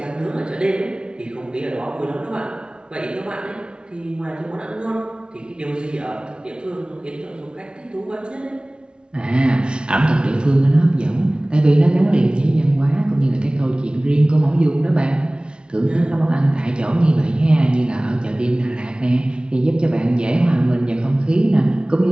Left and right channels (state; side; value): late; left; 0.055 ms